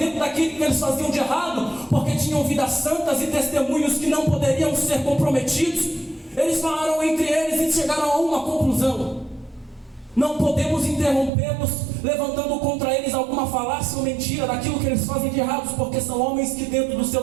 daquilo que eles faziam de errado, porque tinham vidas santas e testemunhos que não poderiam ser comprometidos, eles falaram entre eles e chegaram a uma conclusão: não podemos interrompê-los levantando contra eles alguma falácia ou mentira daquilo que eles fazem de errados, porque são homens que dentro do seu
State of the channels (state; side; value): drops out; left; at 11.3 s